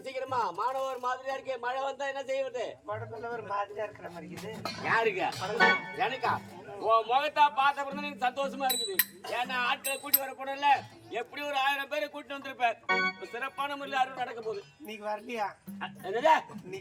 சீக்கிரமா. மாணவர் மாதிரியா இருக்கு. மழை வந்தா என்ன செய்வது? உடம்புல ஒரு மாதிரியா இருக்கிற மாதிரி இருக்குது. யாருக்கு? எனக்கா? உன் முகத்தா பார்த்த பிறகு எனக்கு சந்தோஷமா இருக்குது. ஏன்னா ஆட்களை கூட்டி வர போனல எப்படி ஒரு 1000 பேரை கூட்டி வந்திருப்பேன். சிறப்பான முறையில் அறுவடை நடக்க போகுது. இன்னைக்கு வரலையா? என்னடா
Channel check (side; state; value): both; identical; correlation 1.00